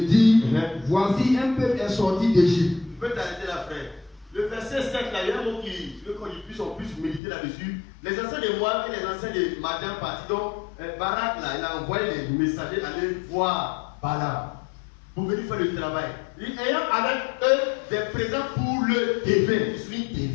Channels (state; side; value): drops out; right; at 7.2 s